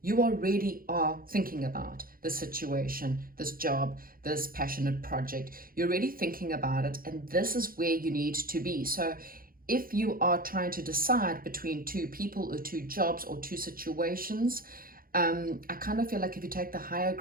already are thinking about the situation, this job, this passionate project. You're already thinking about it, and this is where you need to be. So if you are trying to decide between two people or two jobs or two situations, I kind of feel like if you take the higher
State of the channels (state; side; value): late; left; 0.42 ms